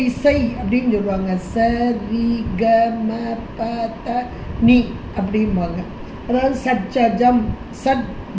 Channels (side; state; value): both; identical; correlation 1.00